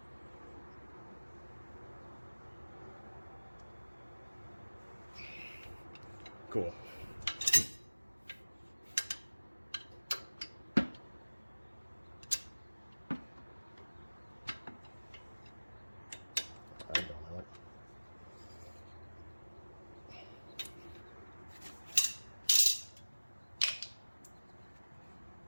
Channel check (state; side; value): inverted; both; correlation -1.00